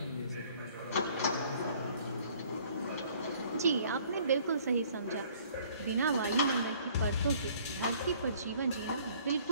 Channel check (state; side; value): inverted; both; correlation -0.57